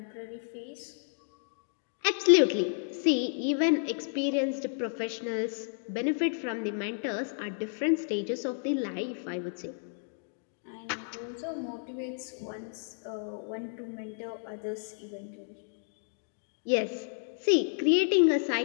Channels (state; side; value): silent; right; digital silence